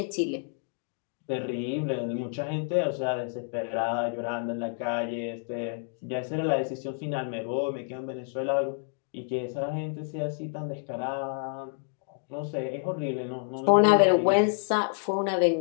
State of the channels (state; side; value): silent; right; 59 dB below the other